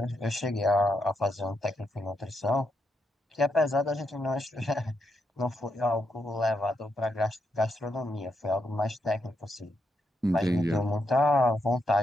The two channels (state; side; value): normal; both; correlation 0.81